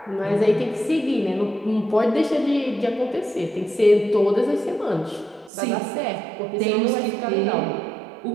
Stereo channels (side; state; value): left; drops out; at 5.5 s